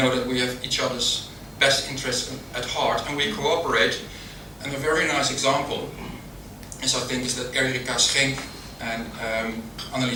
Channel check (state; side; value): identical; both; correlation 1.00